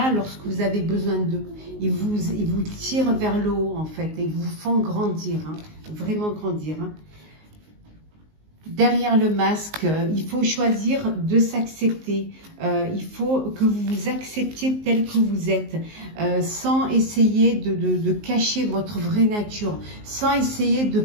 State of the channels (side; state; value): left; late; 19 ms